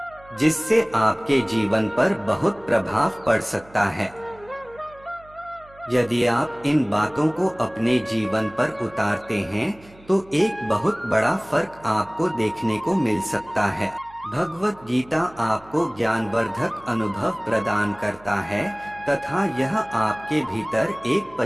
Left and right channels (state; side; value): noise; right; hum, 25 dB below the sound